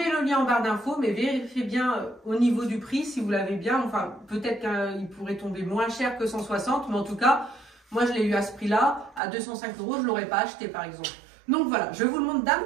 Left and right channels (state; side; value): drops out; left; at 9.2 s